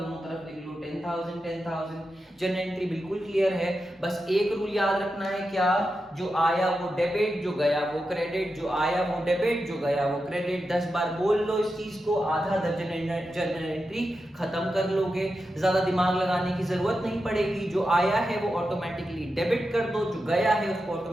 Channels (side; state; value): both; normal; correlation 0.89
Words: तरफ लिख लो 10,000। जनरल एंट्री बिल्कुल क्लियर है। बस एक रूल याद रखना है, क्या, जो आया वो डेबिट, जो गया वो क्रेडिट, जो आया वो डेबिट, जो गया वो क्रेडिट। 10 बार बोल लो इस चीज को, आधा दर्जन जनरल एंट्री खत्म कर लोगे, ज्यादा दिमाग लगाने की जरूरत नहीं पड़ेगी। जो आया है वो ऑटोमेटिकली डेबिट कर दो, जो गया है उसको